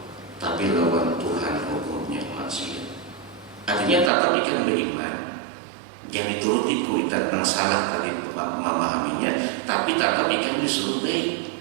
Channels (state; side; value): drops out; left; at 4.1 s